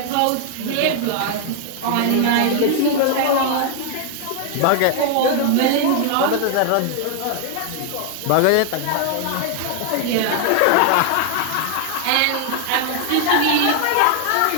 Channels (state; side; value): different; both; correlation 0.00